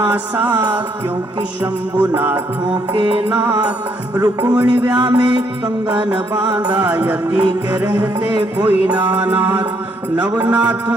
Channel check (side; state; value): both; normal; correlation 0.71